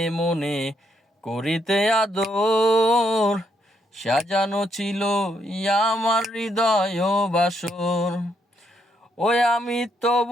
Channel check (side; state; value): both; normal; correlation 0.76